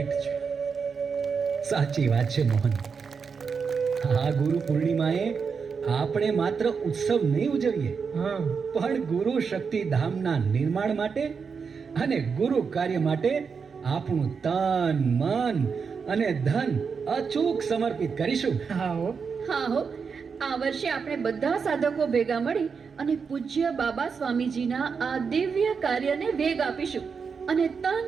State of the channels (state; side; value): quieter; left; 5.7 dB